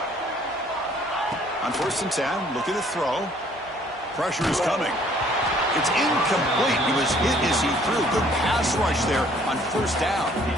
On 1st and 10, looking to throw. Pressure is coming. It's incomplete. He was hit as he threw. Good pass rush there on 1st down.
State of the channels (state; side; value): normal; both; correlation 0.59